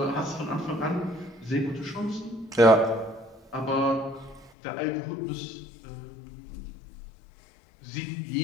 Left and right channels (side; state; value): right; drops out; at 4.5 s